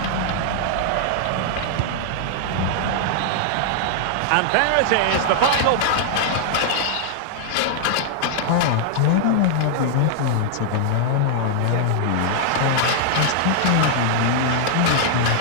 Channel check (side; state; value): both; different; correlation -0.01